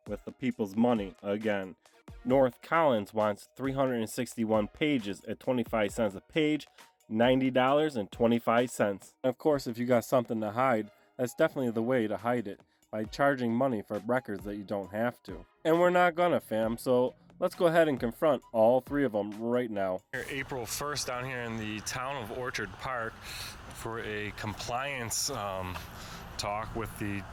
with the people's money again. North Collins wants 361 pages at 25 cents a page, $90.25. Of course, if you got something to hide, that's definitely the way to hide it, by charging money for records that you don't have to. And we're not gonna, fam, so let's go ahead and confront all three of them right now. April 1st down here in the town of Orchard Park for a compliance talk with the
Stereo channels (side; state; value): both; identical; correlation 1.00